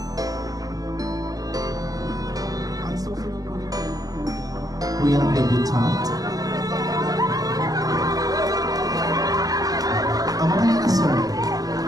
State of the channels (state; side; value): late; left; 0.18 ms